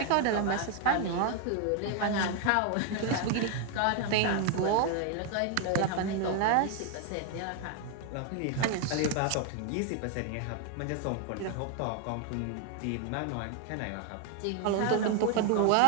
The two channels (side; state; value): both; different; correlation 0.00